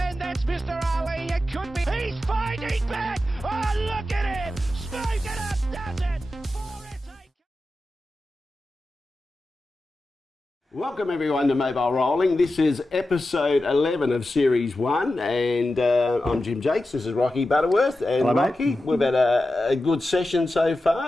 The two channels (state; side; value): normal; both; correlation 0.92